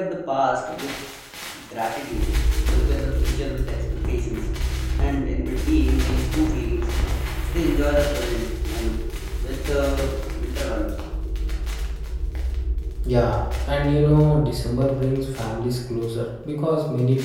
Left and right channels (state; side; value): identical; both; correlation 1.00